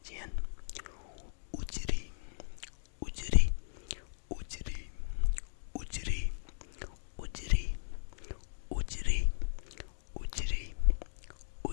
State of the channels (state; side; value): silent; right; digital silence